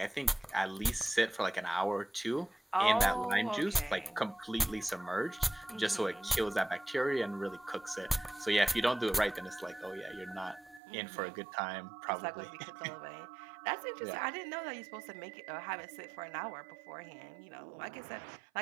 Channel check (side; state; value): left; drops out; at 10.8 s